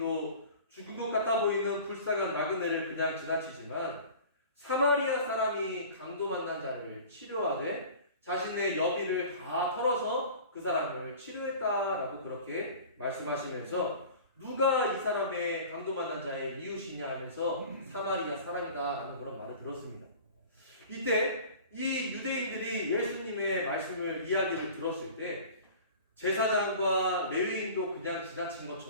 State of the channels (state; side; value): inverted; both; correlation -0.41